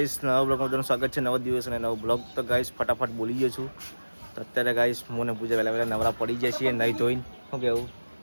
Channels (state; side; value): inverted; both; correlation -1.00